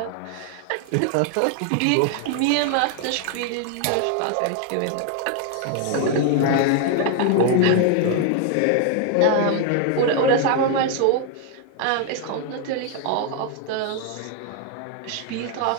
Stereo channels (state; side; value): different; both; correlation 0.00